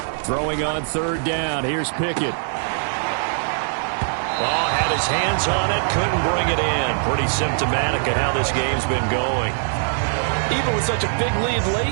Throwing on 3rd down. Here's Pickett. Oh, had his hands on it, couldn't bring it in. Pretty symptomatic of how this game's been going. Even with such a big lead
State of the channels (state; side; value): silent; left; digital silence